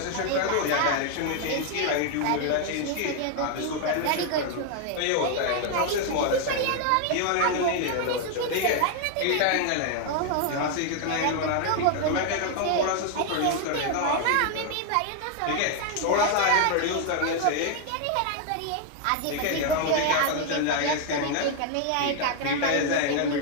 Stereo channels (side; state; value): both; different; correlation 0.00